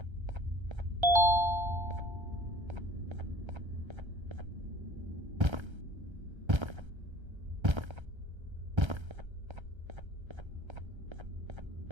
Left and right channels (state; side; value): late; left; 1.3 ms